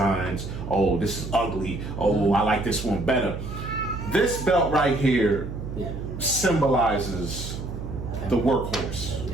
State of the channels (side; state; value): right; noise; hum, 7 dB below the sound